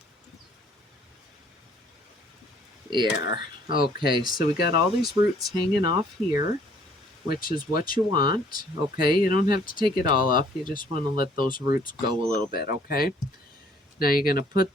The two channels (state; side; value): normal; both; correlation 0.60